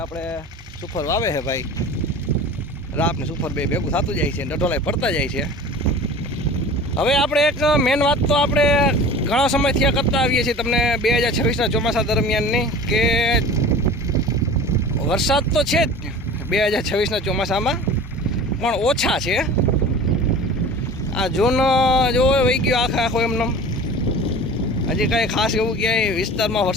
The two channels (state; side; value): normal; both; correlation 0.39